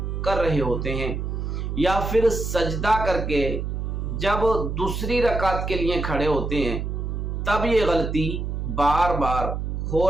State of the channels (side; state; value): right; noise; hum, 3 dB below the sound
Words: कर रहे होते हैं, या फिर सजदा करके जब दूसरी रकात के लिए खड़े होते हैं तब ये गलती बार बार हो